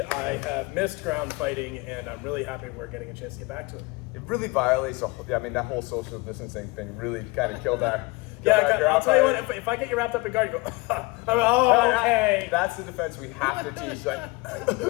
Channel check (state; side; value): quieter; right; 24.4 dB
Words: have missed ground fighting, and I'm really happy we're getting a chance to get back to it. It really violates, that whole social distancing thing really kind of killed our... I'll tell you what, if I get you wrapped up in guard, you go, I'm like, oh, okay. That's the defense we have to teach. Like,